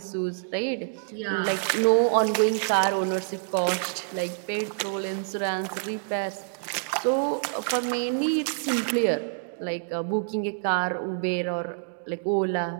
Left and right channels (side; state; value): left; silent; digital silence